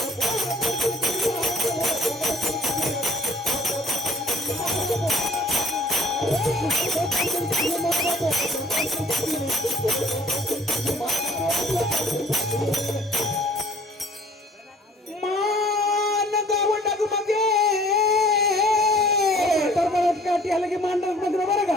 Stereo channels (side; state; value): both; normal; correlation 0.54